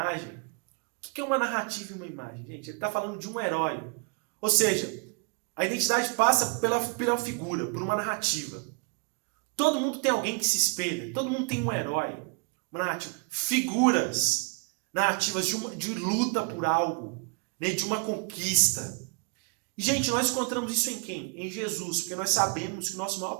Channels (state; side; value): quieter; left; 33.7 dB